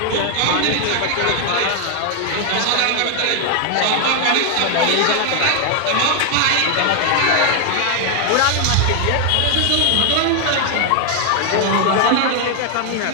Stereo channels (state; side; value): different; both; correlation 0.00